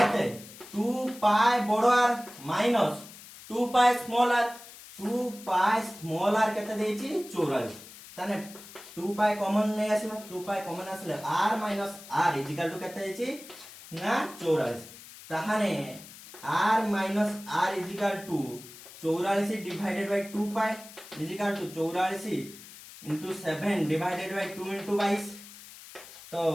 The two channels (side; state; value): left; noise; hiss, 17 dB below the sound